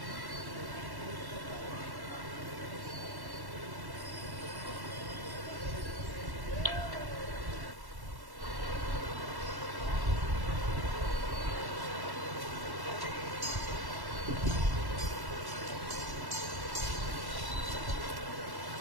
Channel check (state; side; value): late; left; 1.1 ms